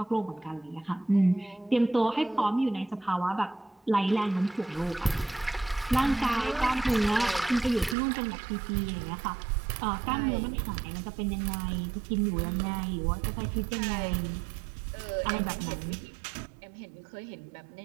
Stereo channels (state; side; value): drops out; left; at 8.0 s